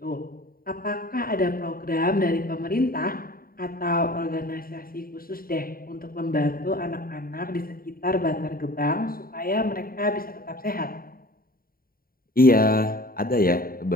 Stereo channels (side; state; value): right; late; 0.43 ms